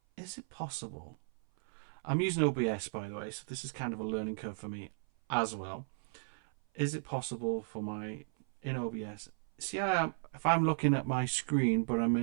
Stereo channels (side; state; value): left; silent; 54 dB below the other